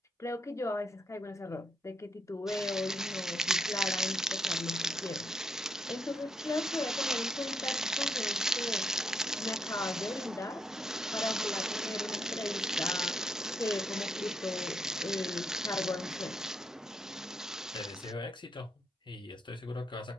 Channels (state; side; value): normal; both; correlation 0.76